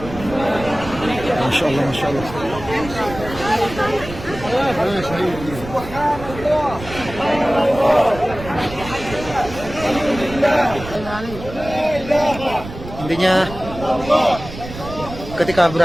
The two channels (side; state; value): right; noise; rumble, 12 dB below the sound